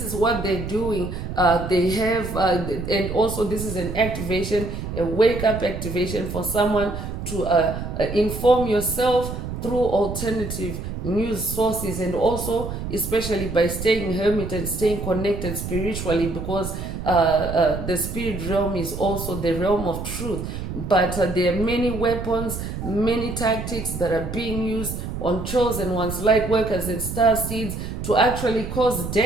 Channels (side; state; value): right; noise; rumble, 6 dB below the sound